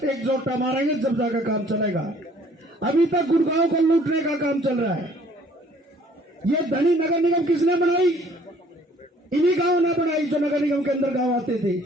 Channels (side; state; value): both; normal; correlation 0.57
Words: एकजुट मारेंगे, जब जाकर काम चलेगा। अभी तक गुड़गांव को लूटने का काम चल रहा है। ये धनी नगर निगम किसने बनाई? इन्हीं गांव ने बनाई जो नगर निगम के अंदर गांव आते थे।